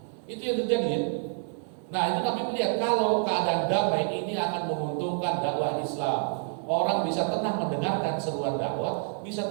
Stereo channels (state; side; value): silent; left; 58 dB below the other